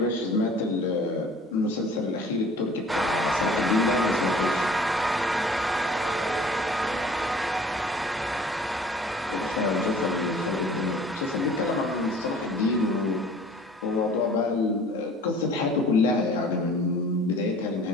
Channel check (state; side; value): normal; both; correlation 0.49